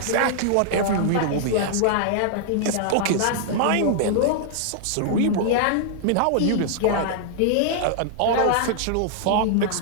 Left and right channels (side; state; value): both; different; correlation -0.01